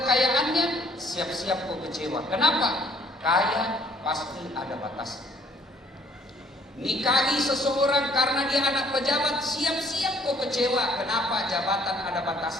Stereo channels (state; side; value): normal; both; correlation 0.60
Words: siap-siap kau kecewa. Kenapa? Kaya pasti ada batasnya. Nikahi seseorang karena dia anak pejabat, siap-siap kau kecewa. Kenapa? Jabatan ada